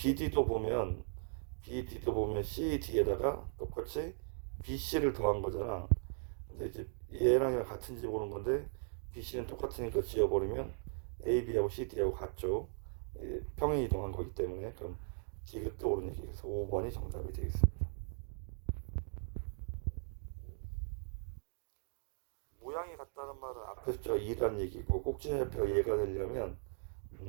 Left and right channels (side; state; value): left; silent; digital silence